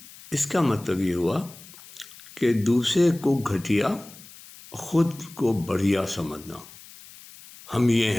اس کا مطلب یہ ہوا کہ دوسرے کو گھٹیا، خود کو بڑھیا سمجھنا. ہم یہ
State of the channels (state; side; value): noise; left; hiss, 19 dB below the sound